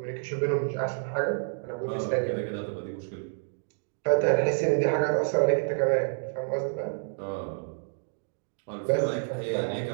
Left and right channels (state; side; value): silent; left; digital silence